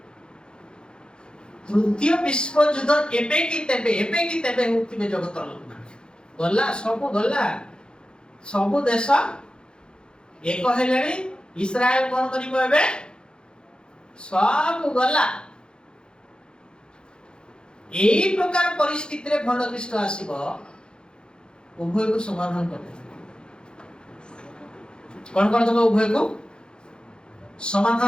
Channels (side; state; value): right; late; 0.049 ms